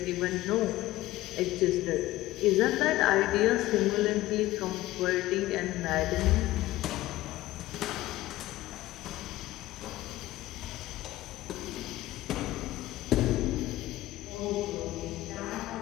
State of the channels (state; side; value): quieter; right; 16.5 dB